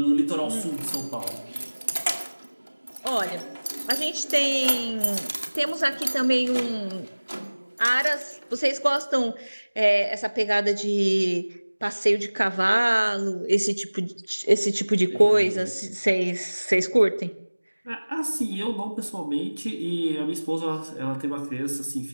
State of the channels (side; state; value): both; inverted; correlation -1.00